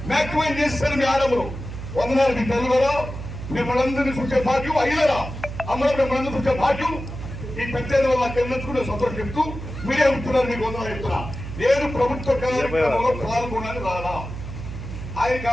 మ్యాక్సిమైజ్ చేస్తారు మీ ఆడములు. వందనాలు మీ తల్లులరా, మిమ్మల్ందరినీ చూసే భాగ్యం అయ్యలరా, అమ్మలు మిమ్మల్ని చూసే భాగ్యం ఈ పెద్దల వల్ల తెలుసుకునే సంతోషం చెప్తూ మీరే ఉంటున్నారు. మీకు వందనాలు చెప్తున్నా. నేను ప్రభుత్వ కార్యక్రమంలో పాల్గొనని రాలా, ఆయన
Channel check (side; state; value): right; noise; hum, 9 dB below the sound